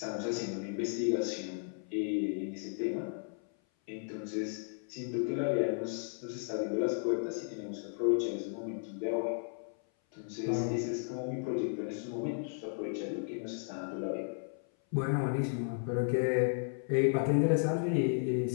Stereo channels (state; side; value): silent; right; 55 dB below the other